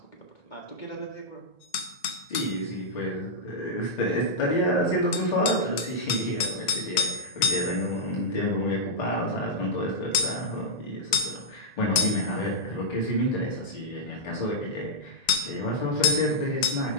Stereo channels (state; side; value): late; right; 1.9 ms